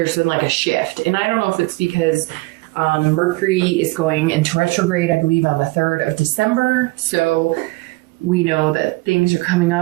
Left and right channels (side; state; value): left; quieter; 23.2 dB